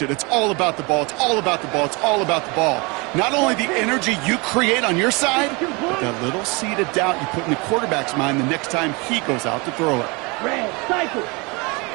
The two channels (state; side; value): quieter; left; 27.9 dB